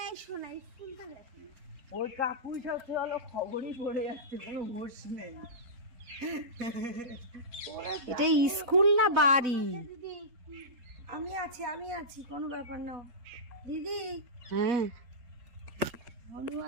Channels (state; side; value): late; left; 4.1 ms